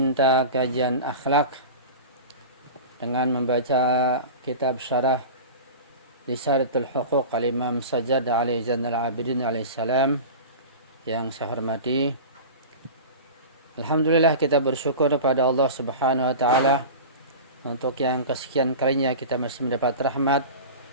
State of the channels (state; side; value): inverted; both; correlation -0.32